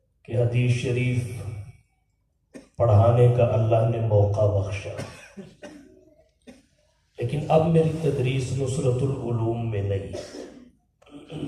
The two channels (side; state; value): both; identical; correlation 1.00